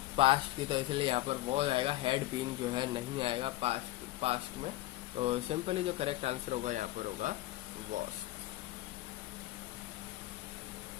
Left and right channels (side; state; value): right; quieter; 16.7 dB